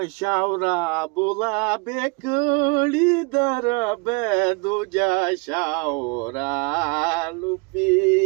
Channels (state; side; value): quieter; left; 30.5 dB